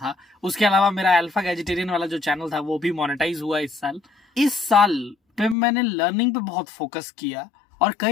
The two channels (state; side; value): drops out; right; at 5.6 s